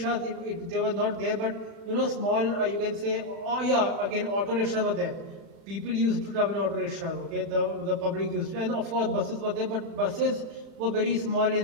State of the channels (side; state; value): left; late; 36 ms